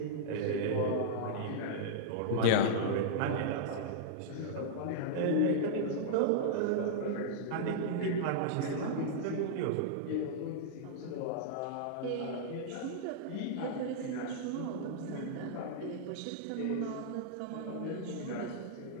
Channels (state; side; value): different; both; correlation -0.02